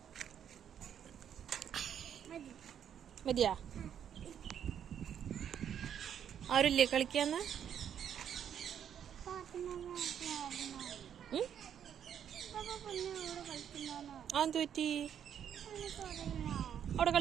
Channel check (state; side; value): quieter; left; 9.0 dB